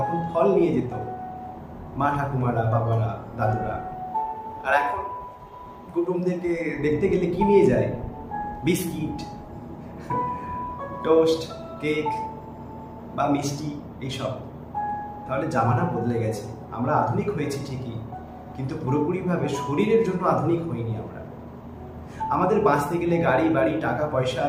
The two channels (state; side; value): identical; both; correlation 1.00